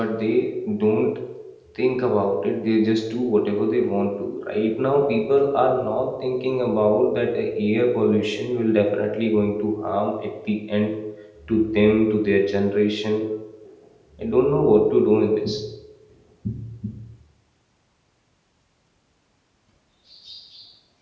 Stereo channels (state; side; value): identical; both; correlation 1.00